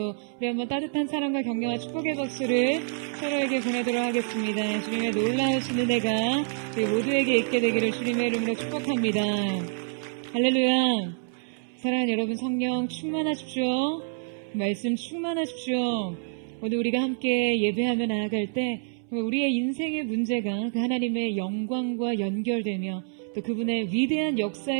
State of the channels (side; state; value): left; silent; 60 dB below the other